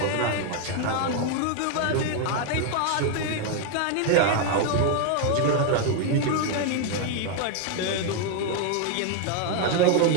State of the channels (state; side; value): different; both; correlation 0.01